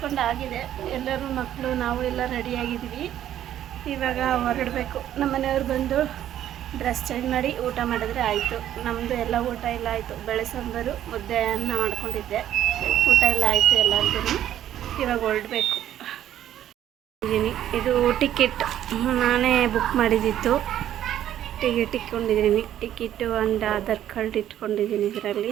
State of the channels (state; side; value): quieter; left; 11.5 dB